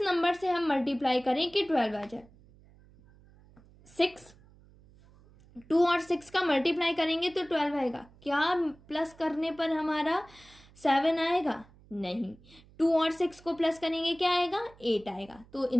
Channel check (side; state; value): right; noise; hum, 26 dB below the sound